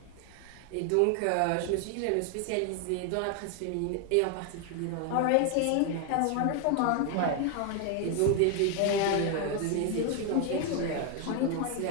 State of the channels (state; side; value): different; both; correlation 0.01